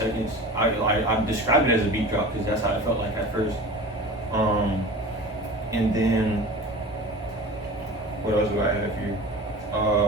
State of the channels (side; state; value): both; normal; correlation 0.36